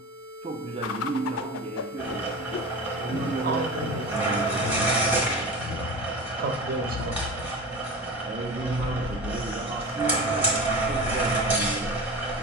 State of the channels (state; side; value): normal; both; correlation 0.30